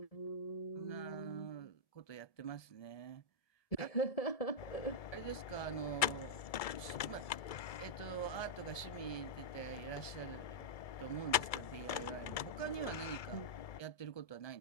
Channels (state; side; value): late; right; 2.3 ms